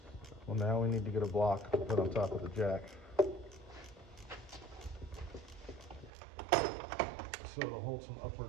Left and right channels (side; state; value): left; drops out; at 6.1 s